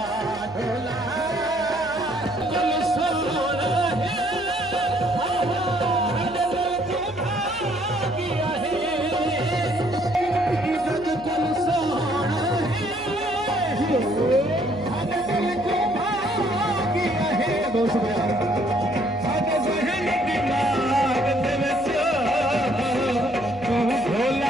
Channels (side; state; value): left; noise; hum, 20 dB below the sound